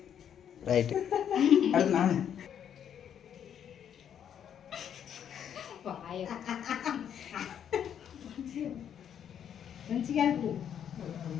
ரைட். அடுத்து நானு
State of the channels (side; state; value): right; quieter; 9.0 dB